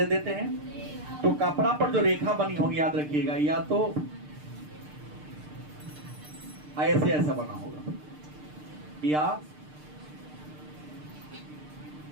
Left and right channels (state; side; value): late; left; 6.7 ms